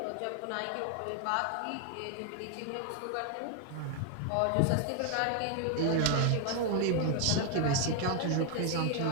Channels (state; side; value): different; both; correlation 0.00